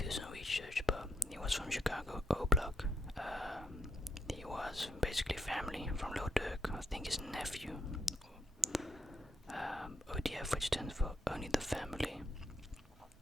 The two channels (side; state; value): both; normal; correlation 0.77